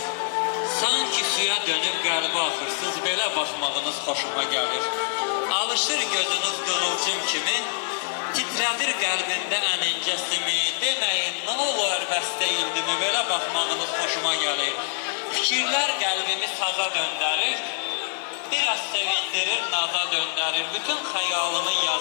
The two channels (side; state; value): right; silent; 58 dB below the other